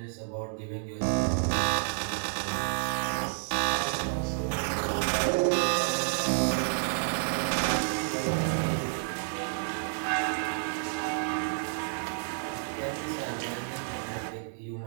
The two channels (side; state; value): left; silent; digital silence